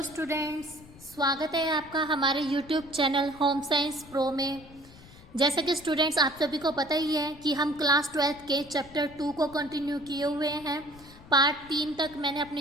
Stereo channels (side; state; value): left; noise; rumble, 21 dB below the sound